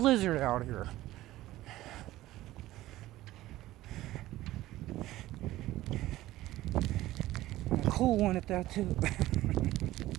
out here. And a cool one at that too.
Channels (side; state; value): left; quieter; 16.0 dB